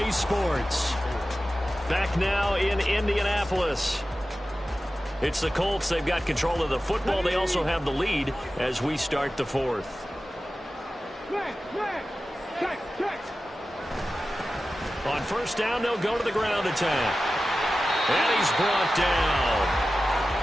Sports. Back now in Indianapolis. It's the Colts. They've got control of the football. They also have the lead as we start the 4th. On 1st down, they'll go to the ground attack. And he's brought down.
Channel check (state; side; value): normal; both; correlation 0.94